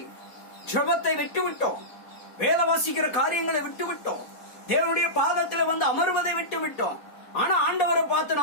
ஜெபத்தை விட்டுவிட்டோம், வேத வாசிக்கிற காரியங்களை விட்டுவிட்டோம், தேவனுடைய பாதத்தில் வந்து அமர்வதை விட்டுவிட்டோம். ஆனா ஆண்டவரை பார்த்து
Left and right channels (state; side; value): late; right; 4.1 ms